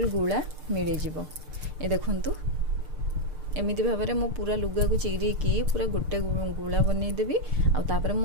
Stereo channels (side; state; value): left; late; 6.7 ms